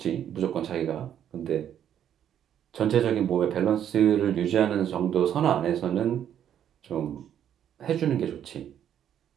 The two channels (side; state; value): left; quieter; 9.8 dB